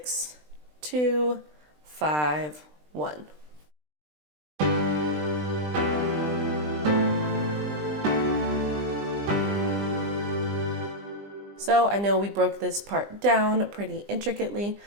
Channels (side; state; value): left; late; 20 ms